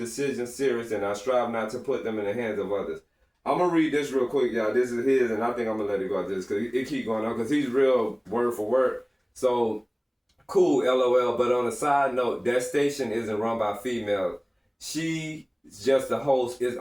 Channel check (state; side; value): identical; both; correlation 1.00